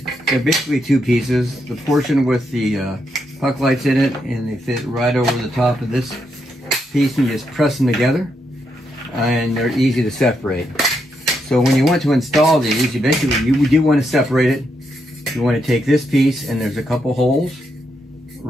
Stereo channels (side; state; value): both; normal; correlation 0.80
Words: they're basically 2 pieces. The portion with the puck lights in it, and they fit right over the top of this piece, and you just press them together, and they're easy to separate. So when you want to install these, you do want to separate it. You want to take this piece, and there's a couple holes